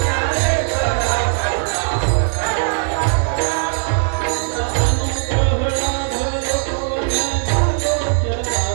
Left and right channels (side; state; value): left; silent; 67 dB below the other